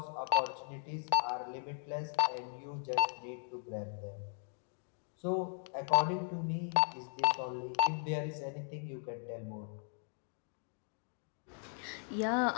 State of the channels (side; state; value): right; silent; 53 dB below the other